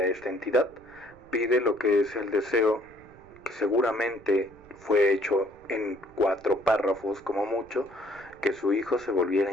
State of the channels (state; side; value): noise; right; rumble, 25 dB below the sound